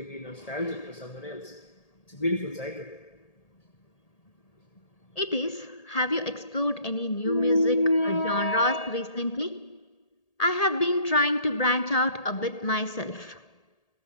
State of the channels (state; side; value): late; right; 1.8 ms